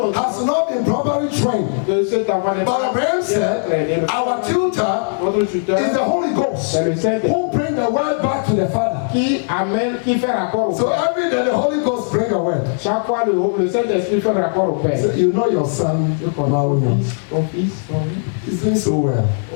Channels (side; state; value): right; silent; digital silence